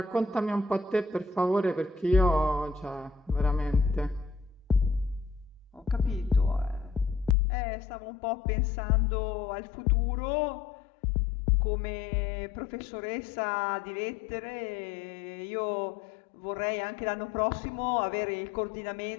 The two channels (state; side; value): drops out; right; at 7.4 s